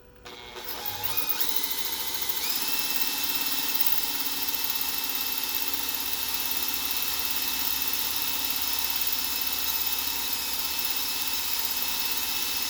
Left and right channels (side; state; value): both; identical; correlation 1.00